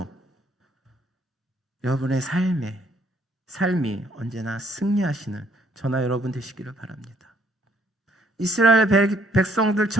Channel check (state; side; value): normal; both; correlation 0.65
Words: 여러분의 삶이 언제나 승리하시는 저나 여러분 되시기를 바랍니다. 이스라엘